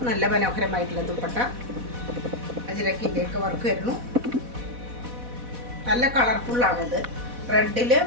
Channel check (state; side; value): late; left; 4.1 ms